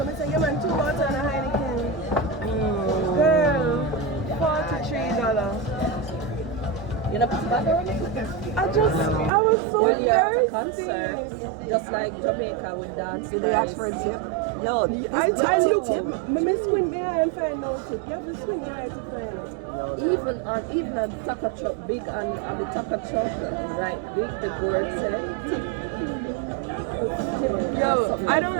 I said, yeah man, 2 water and a Heineken. Girl, $43. You know, put back on? I was so When you're at a thirsty. concert, just like Jamaica with dance. Did they ask for a tip? Yo, I looked at me squint behind and find no tip. You have to squint your eye to find it. Even a taco truck, big and the taco truck, right, big, the board said, tip. Yo, I don't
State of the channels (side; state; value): left; drops out; at 9.3 s